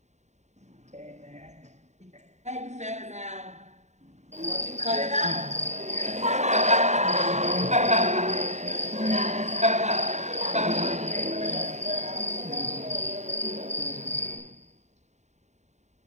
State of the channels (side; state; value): left; late; 0.34 ms